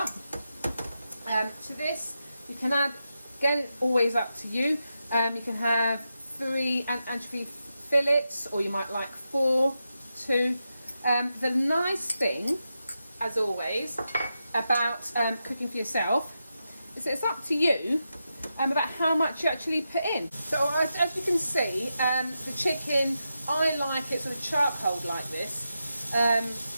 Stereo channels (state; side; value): inverted; both; correlation -0.88